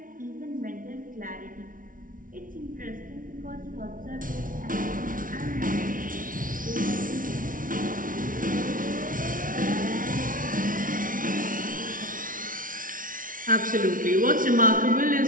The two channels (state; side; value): late; left; 0.39 ms